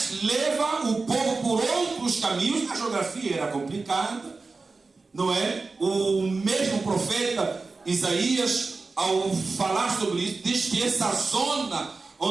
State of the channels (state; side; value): quieter; left; 3.9 dB